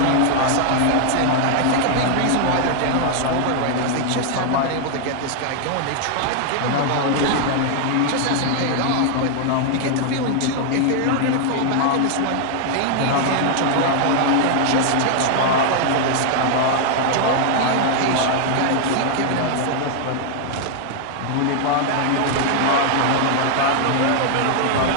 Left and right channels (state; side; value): different; both; correlation 0.00